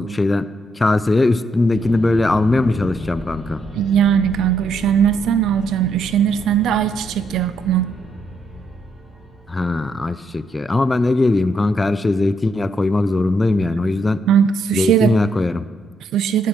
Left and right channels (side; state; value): both; normal; correlation 0.76